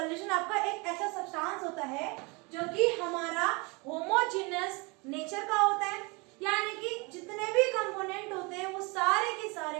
आपका एक ऐसा सब्सटेंस होता है जो कि हमारा होमोजेनस नेचर का होता है, यानी कि जितने भी कंपोनेंट होते हैं वो सारे के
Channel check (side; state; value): left; quieter; 28.3 dB